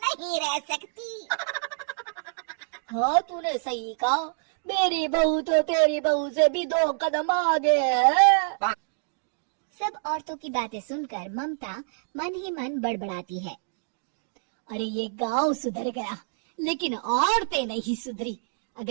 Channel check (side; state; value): left; silent; digital silence